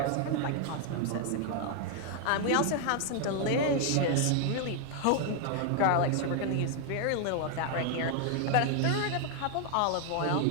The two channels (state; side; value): different; both; correlation 0.00